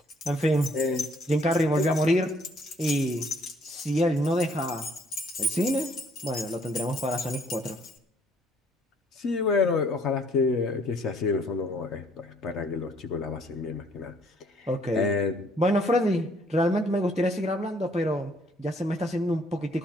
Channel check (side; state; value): both; normal; correlation 0.63